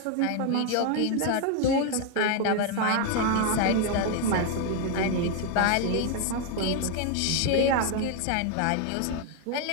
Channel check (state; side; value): different; both; correlation 0.01